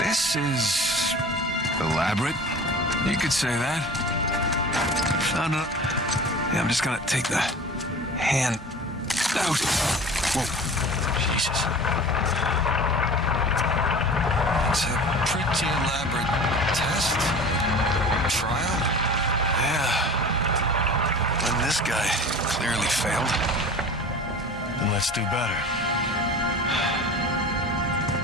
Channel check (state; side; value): normal; both; correlation 0.39